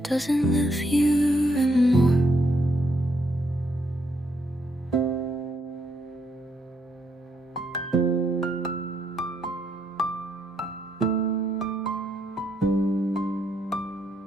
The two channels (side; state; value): both; normal; correlation 0.75